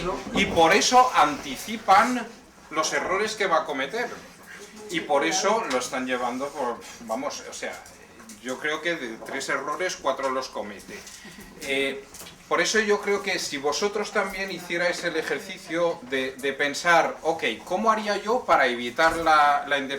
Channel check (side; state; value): both; identical; correlation 1.00